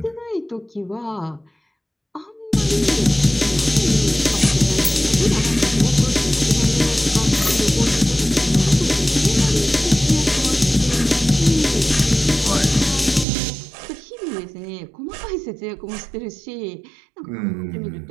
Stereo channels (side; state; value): left; drops out; at 13.2 s